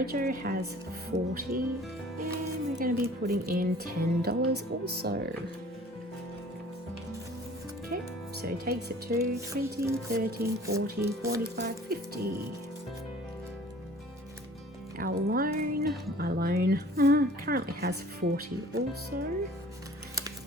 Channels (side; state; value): both; normal; correlation 0.49